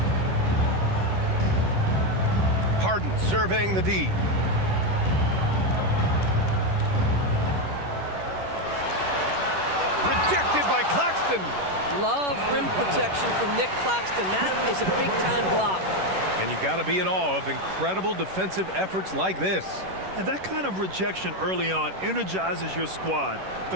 Harden surveying the D. Claxton. Love rim protection from Nick Claxton. That is a big-time block. And you got to be in awe of incredible defensive efforts like this. And that kind of rejection early on energizes your squad.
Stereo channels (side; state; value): left; late; 11 ms